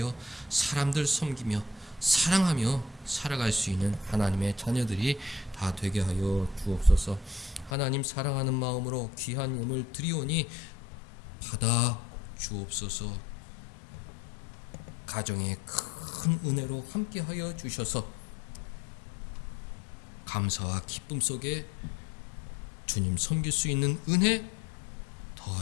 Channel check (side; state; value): right; drops out; at 7.7 s